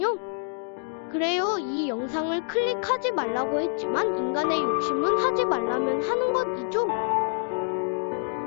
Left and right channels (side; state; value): right; silent; 61 dB below the other